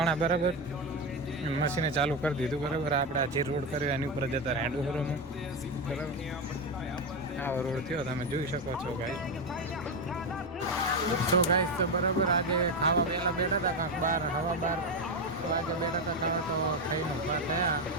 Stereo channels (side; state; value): both; normal; correlation 0.11